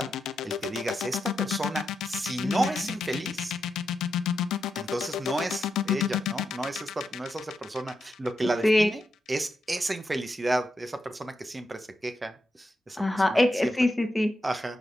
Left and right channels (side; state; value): both; normal; correlation 0.85